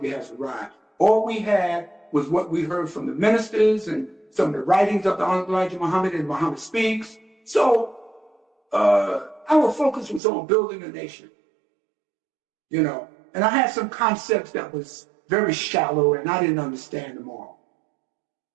Has Arrived. All we had was what we heard from the ministers and some of the writings of the Honorable Elijah Muhammad and Muhammad Speaks. So our focus was on building a nation, you know. And I had some concepts that was very shallow and I didn't understand them all.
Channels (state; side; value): drops out; left; at 10.2 s